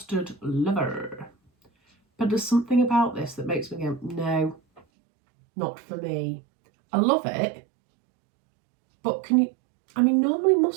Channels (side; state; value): left; drops out; at 4.8 s